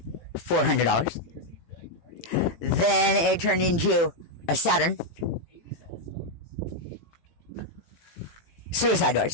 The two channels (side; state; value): right; late; 18 ms